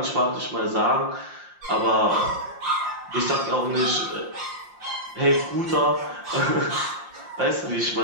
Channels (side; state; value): left; late; 5.7 ms